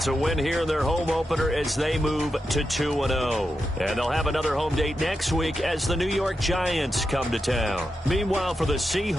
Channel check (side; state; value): both; normal; correlation 0.88